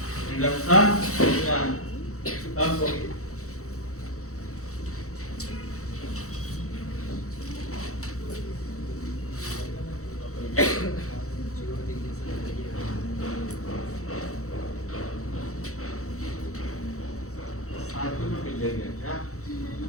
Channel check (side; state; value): right; late; 0.64 ms